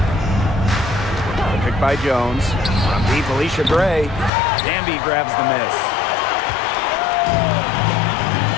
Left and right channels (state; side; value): drops out; right; at 4.3 s